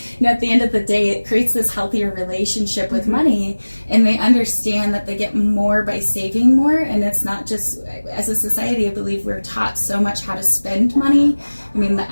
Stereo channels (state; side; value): inverted; both; correlation -1.00